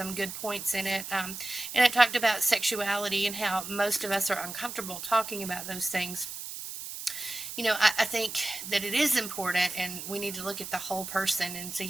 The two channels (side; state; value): right; noise; hiss, 8 dB below the sound